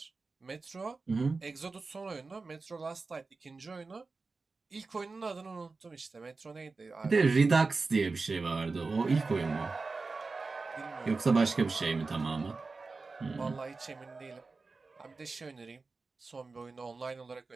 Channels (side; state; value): left; quieter; 4.0 dB